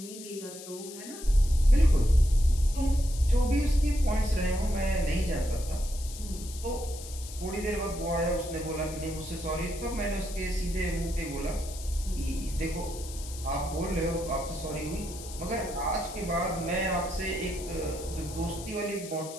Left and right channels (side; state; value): left; noise; hiss, 13 dB below the sound